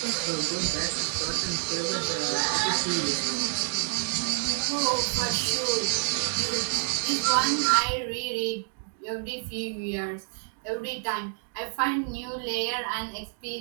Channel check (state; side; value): silent; left; digital silence